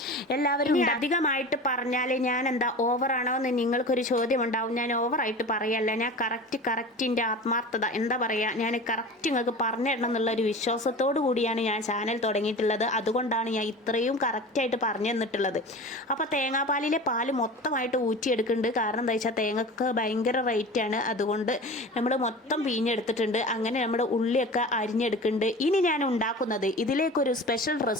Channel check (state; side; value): normal; both; correlation 0.35